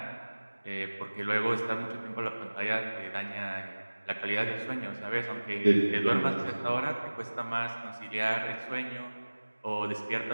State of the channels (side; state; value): both; inverted; correlation -1.00